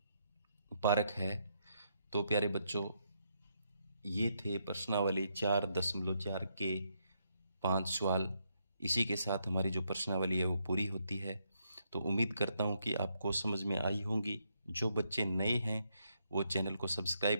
पारक है। तो प्यारे बच्चों, ये थे प्रश्नावली 4.4 के 5 सवाल। इसी के साथ हमारी जो प्रश्नावली है वो पूरी होती है। तो उम्मीद करता हूँ कि आपको समझ में आई होंगी। जो बच्चे नए हैं वो चैनल को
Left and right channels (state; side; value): inverted; both; correlation -0.78